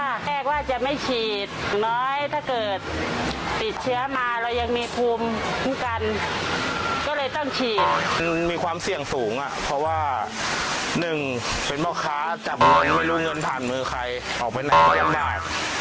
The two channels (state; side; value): identical; both; correlation 1.00